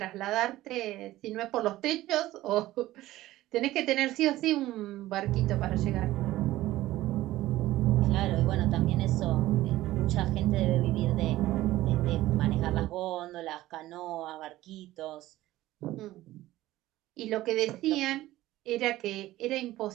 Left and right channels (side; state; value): left; quieter; 16.0 dB